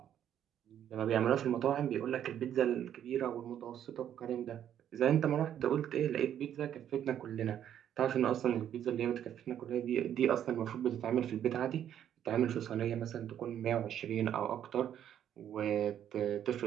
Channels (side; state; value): left; quieter; 10.1 dB